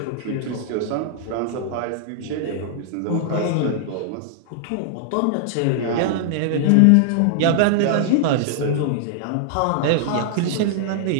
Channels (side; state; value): both; different; correlation -0.01